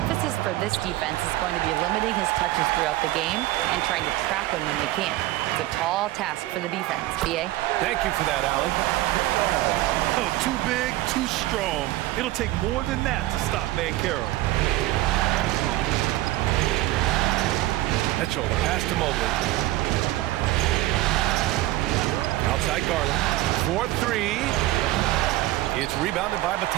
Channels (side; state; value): left; quieter; 16.8 dB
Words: for this defense is going to be limiting his touches throughout the game and trying to trap him when they can. It's a tall task for the defense. BA? Thank you for that, Allie. Oh, too big, too strong. It'll take more than that to stop Banchero. Mitchell, the pass to Mobley. Outside Garland. 4-3. It's rebounded by